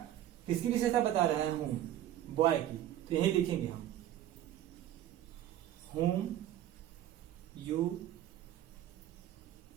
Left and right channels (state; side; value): quieter; left; 12.2 dB